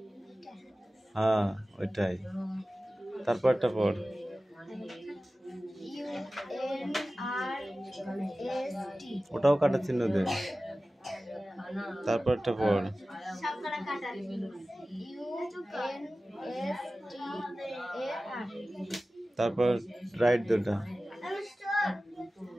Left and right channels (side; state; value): both; normal; correlation 0.96